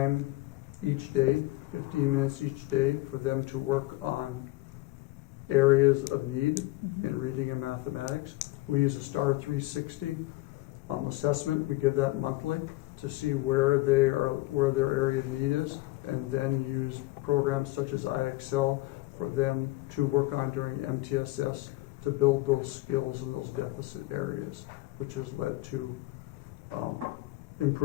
each day, 15 minutes each day, for them to work on areas of need in reading and mathematics. We use a STAR 360 assessment. We give that monthly to see where their area of need is, and then use programs such as iExcel for them to work on during MTSS to build those skills in those deficit areas, which has led to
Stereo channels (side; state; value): right; quieter; 19.8 dB